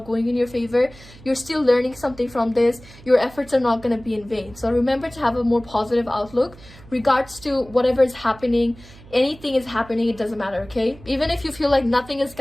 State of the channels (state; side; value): noise; right; hum, 21 dB below the sound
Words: going in your favor, you're still learning something from this. Your efforts are not going to be in vain. So remember to have a more positive outlook regards to whatever is happening. Anything is happening, it doesn't matter. Okay, even if you feel like nothing is